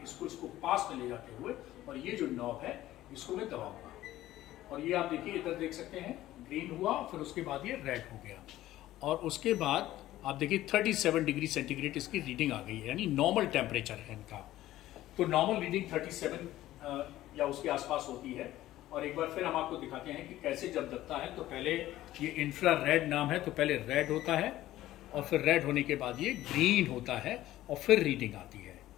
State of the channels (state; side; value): quieter; right; 14.8 dB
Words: इसको पास में ले जाते हुए, और ये जो नॉब है इसको मैं दबाऊंगा, और ये आप देखिए इधर देख सकते हैं ग्रीन हुआ, फिर उसके बाद ये रेड हो गया, और उसके बाद आप देखिए 37 डिग्री सेंटीग्रेड इसकी रीडिंग आ गई है, यानी नॉर्मल टेम्परेचर है इनका। तो नॉर्मल रीडिंग 37 या उसके आसपास होती है। और एक बार फिर हम आपको दिखाते हैं कि कैसे जब दबता है तो पहले ये इंफ्रारेड नाम है, तो पहले रेड होता है और फिर रेड होने के बाद ये ग्रीन होता है और फिर रीडिंग आती है।